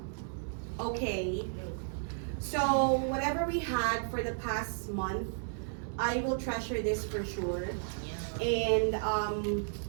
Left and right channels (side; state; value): left; silent; digital silence